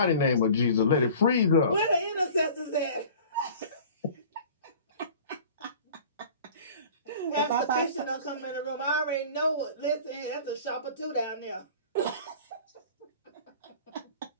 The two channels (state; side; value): inverted; both; correlation -0.43